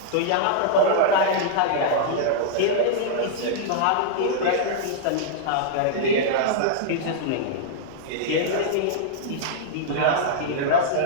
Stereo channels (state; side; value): different; both; correlation -0.02